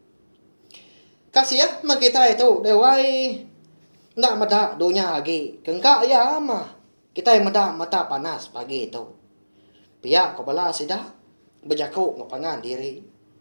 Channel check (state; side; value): inverted; both; correlation -1.00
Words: Kasih ya kita itu dewai. Nak medak dunia lagi. Kengkak ya mah. Kita medak mata panas pagi itu. Pihak kepala sidak. Berjakuk ngepangan diri.